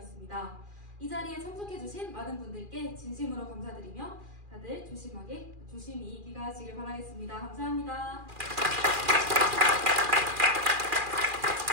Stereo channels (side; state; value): left; late; 2.4 ms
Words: 이 자리에 참석해주신 많은 분들께 진심으로 감사드리며 다들 조심히 귀가하시길 바라겠습니다. 감사합니다.